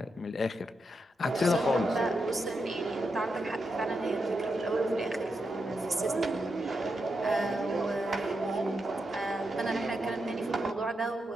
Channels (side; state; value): both; normal; correlation 0.85